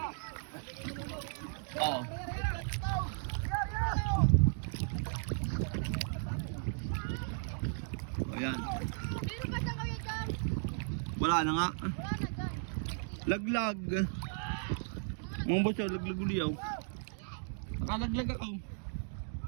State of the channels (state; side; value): silent; left; digital silence